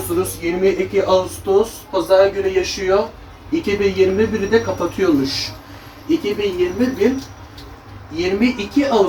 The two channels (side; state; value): both; identical; correlation 1.00